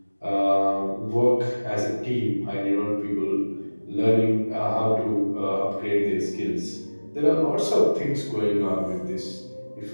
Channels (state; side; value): inverted; both; correlation -1.00